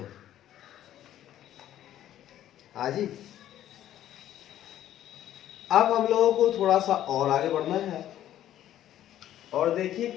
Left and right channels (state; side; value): quieter; right; 12.1 dB